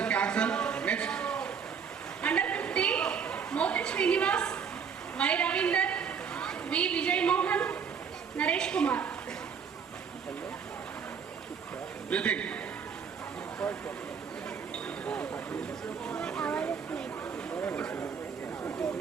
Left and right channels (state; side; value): quieter; left; 6.7 dB